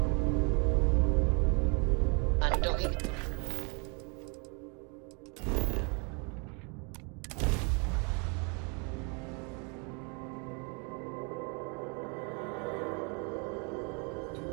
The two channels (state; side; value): quieter; left; 34.1 dB